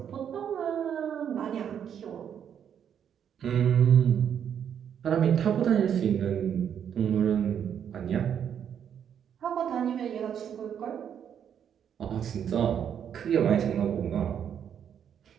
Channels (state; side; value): quieter; left; 8.6 dB